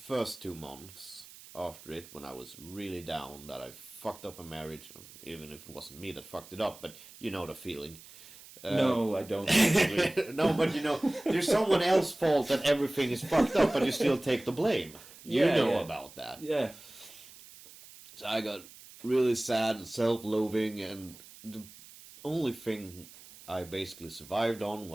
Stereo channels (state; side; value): noise; right; hiss, 19 dB below the sound